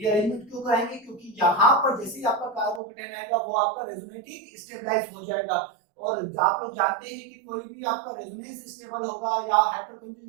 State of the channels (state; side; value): drops out; left; at 2.8 s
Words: क्यों कराएंगे? क्योंकि यहाँ पर जैसे ही आपका कार्बोकेटायन आएगा वो आपका रेजोनेटिंग स्टेबलाइज हो जाएगा। और आप लोग जानते हैं कि कोई भी आपका रेजोनेंस स्टेबल होगा या